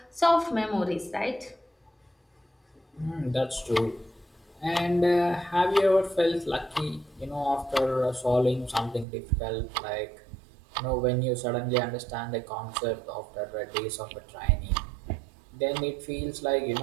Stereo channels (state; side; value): drops out; left; at 9.1 s